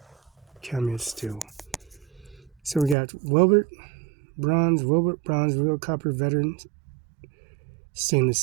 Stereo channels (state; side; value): drops out; left; at 3.0 s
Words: Cameo Steel. So we got Wilbert Bronze, Real Copper Veteran Stainless